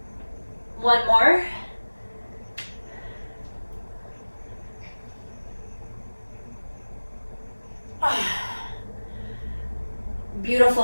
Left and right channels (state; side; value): inverted; both; correlation -1.00